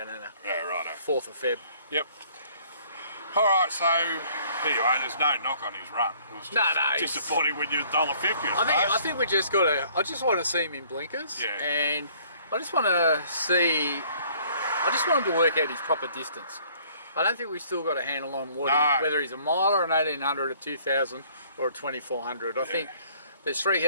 in a 4th of Feb. Yep. All right, so anyway, there's no knock on his run. It was just disappointing when you're $1.50. I think we just got to. I just want to see him in blinkers, and I just want to see. I just want him to work out his proper distance. I don't think we've still got a handle on whether he's a mile or an 1800, a 2000 or a 2400. I think there's 3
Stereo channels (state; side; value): inverted; both; correlation -0.58